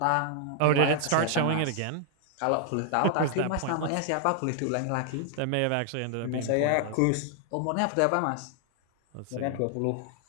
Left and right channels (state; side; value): different; both; correlation 0.00